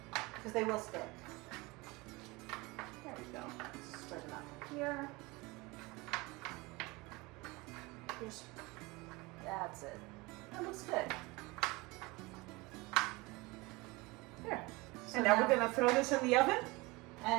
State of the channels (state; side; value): quieter; left; 23.6 dB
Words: Because they will stick. There we go. Spread them out here. Here's, that's it. That looks good. There. So And now we're going to throw this in the oven.